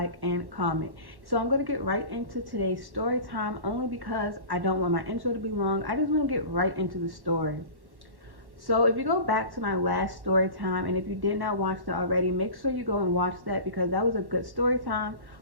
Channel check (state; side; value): late; left; 1.1 ms